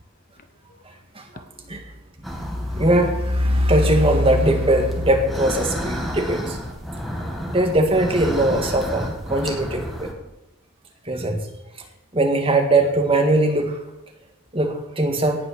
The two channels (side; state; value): both; normal; correlation 0.53